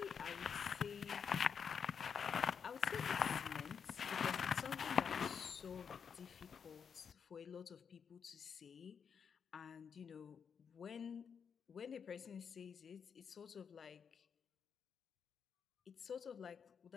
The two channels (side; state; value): right; quieter; 6.8 dB